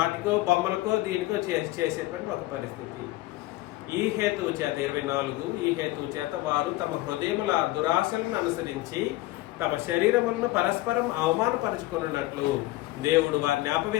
బొమ్మలకో దీనికో చేసేటువంటి ఒక పరిస్థితి. ఈ హేతువు చేత 24 ఈ హేతువు చేత వారు తమ హృదయముల దురాశలను అనుసరించి తమ శరీరములను పరస్పరం అవమానపరుచుకున్నట్లు దేవుడు వారిని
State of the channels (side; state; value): right; quieter; 18.0 dB